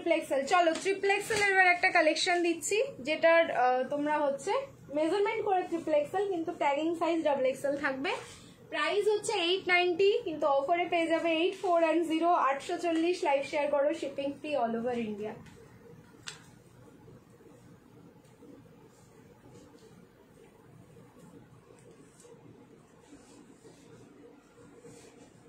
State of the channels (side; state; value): both; identical; correlation 1.00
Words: XL. চলো ট্রিপল এক্সেল এবার একটা কালেকশন দিচ্ছি, যেটার তোমরা হচ্ছে মেজারমেন্ট করে ট্রিপল এক্সেল, কিন্তু ট্যাগিং সাইজ ডাবল এক্সেল থাকবে। প্রাইস হচ্ছে 890, কিন্তু অফারে পেয়ে যাবে 8410। 840, লাইভ শেয়ার করো, shipping free all over India.